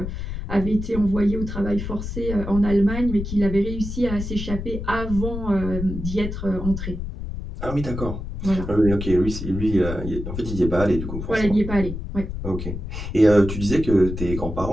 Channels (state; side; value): noise; left; rumble, 6 dB below the sound